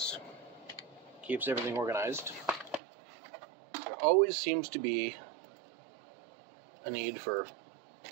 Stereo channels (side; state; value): left; drops out; at 2.8 s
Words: keeps everything organized. There always seems to be a need for